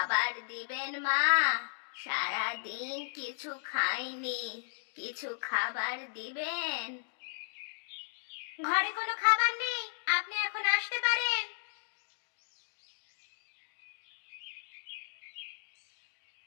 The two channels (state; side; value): silent; right; digital silence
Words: দিবেন মা? সারাদিন কিছু খাইনি, কিছু খাবার দিবেন? ঘরে কোনো খাবার নেই, আপনি এখন আসতে পারেন।